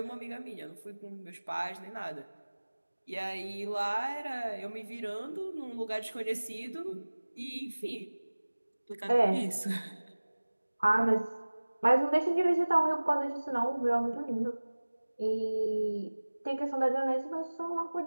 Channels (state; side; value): inverted; both; correlation -1.00